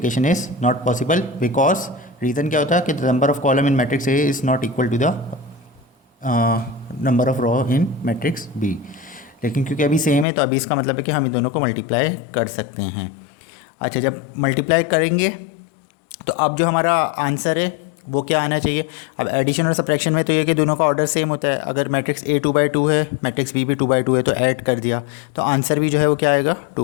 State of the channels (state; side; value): drops out; right; at 10.2 s